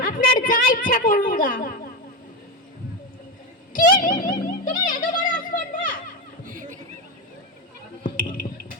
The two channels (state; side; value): normal; both; correlation 0.14